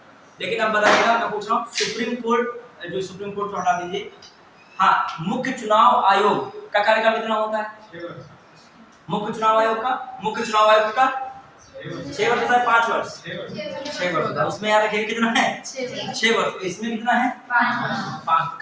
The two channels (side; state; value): both; identical; correlation 1.00